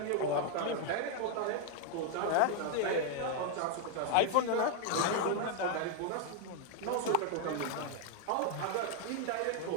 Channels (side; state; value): both; different; correlation 0.00